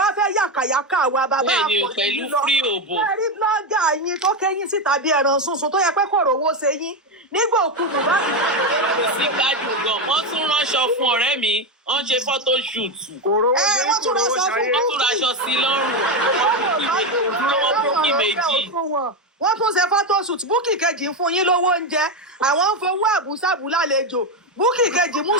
wá fẹ́ yàkàyàkà wa bàbá àpò yín lọ ẹ rí blọ́gà yín tó kẹ́yìn síta bí ẹran sunsun tó yẹ pé kò rówó ṣe yín nígbà òkú Mohbad. sí gbádùn gan wọ́n tún ránṣọ fún ọ̀rẹ́ mi wọ́n ṣe photo shoot. wọ́n tún raṣọ sí lọ́rùn wọ́n bókì méjì. wọ́n tún ṣe photo shoot búkì kejì ń fún yín lówó oúnjẹ àwọn ń fowó àbúṣàbù lálejò búkì kejì mú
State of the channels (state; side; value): normal; both; correlation 0.11